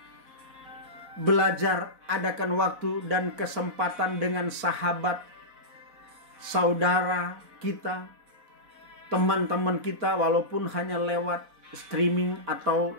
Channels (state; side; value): late; left; 4.1 ms